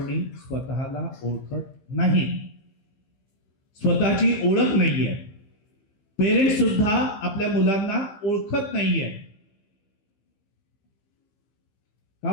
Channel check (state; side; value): late; right; 15 ms